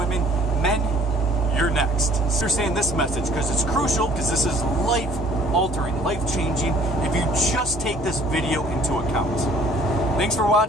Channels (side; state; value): both; normal; correlation 0.56